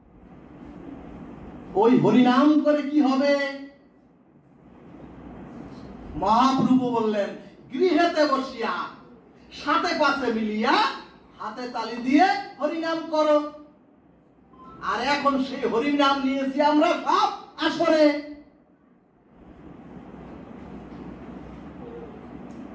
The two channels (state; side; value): identical; both; correlation 1.00